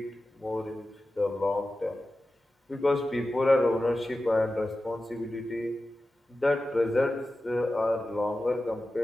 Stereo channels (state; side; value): normal; both; correlation 0.94